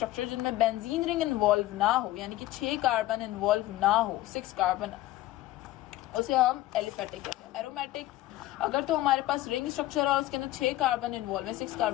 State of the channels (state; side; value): quieter; right; 16.0 dB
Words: जिनमें बेंजीन रिंग इन्वॉल्व ना हो, यानी कि 6 कार्बन इन्वॉल्व ना हो, 6 कार्बन, उसे हम एलिफेटिक कहते हैं। एरोमेटिक अगर तो हमारे पास रिंग स्ट्रक्चर है और उसके अंदर 6 कार्बन इन्वॉल्व है, 6